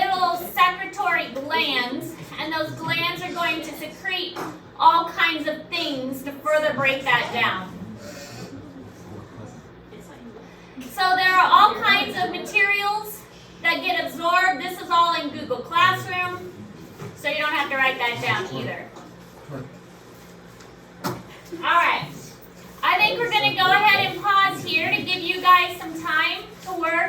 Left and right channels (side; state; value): both; identical; correlation 1.00